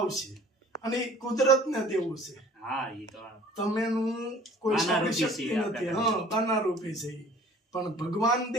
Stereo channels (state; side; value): normal; both; correlation 0.51